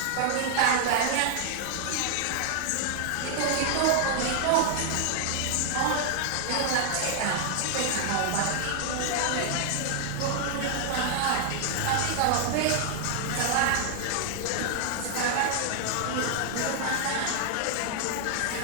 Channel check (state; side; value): different; both; correlation 0.00